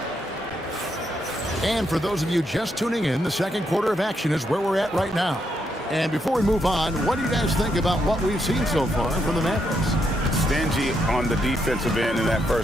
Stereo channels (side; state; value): both; normal; correlation 0.79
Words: And for those of you just tuning in, the second quarter of action is where we're at right now. And before we move on, what do you guys think about what we've seen so far from the Mavericks? Stingy on the defensive end in that